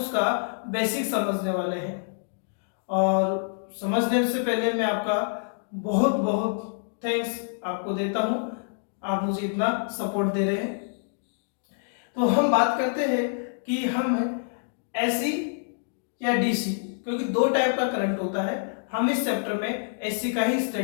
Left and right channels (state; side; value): silent; right; digital silence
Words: बेसिक समझने वाले हैं और समझने से पहले मैं आपका बहुत बहुत थैंक्स आपको देता हूँ। आप मुझे इतना सपोर्ट दे रहे हैं। तो हम बात करते हैं कि हम एसी या डीसी, क्योंकि दो टाइप का करंट होता है। हम इस चैप्टर में एसी का ही